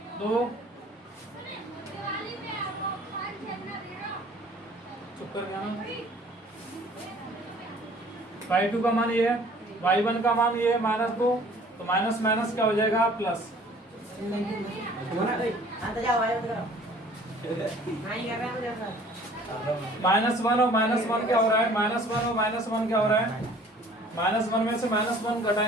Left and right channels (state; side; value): normal; both; correlation 0.52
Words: 2, चुप कर गया, y2 का मान ये है, y1 का मान ये है -2, तो माइनस माइनस क्या हो जाएगा प्लस। -1 और -1 क्या हो रहा है, -1 और -1 क्या हो रहा है, -1 में से -1